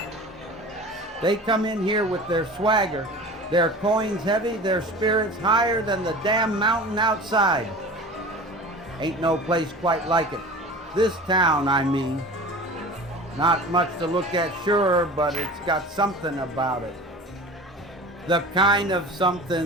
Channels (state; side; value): normal; both; correlation 0.38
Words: They come in here with their swagger, their coins heavy, their spirits higher than the damn mountain outside. Ain't no place quite like it. This town, I mean. Not much to look at, sure, but it's got something about it. The kind of